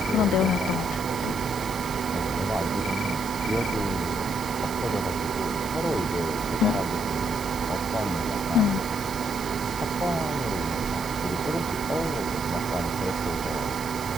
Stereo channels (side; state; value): right; noise; hiss, 13 dB below the sound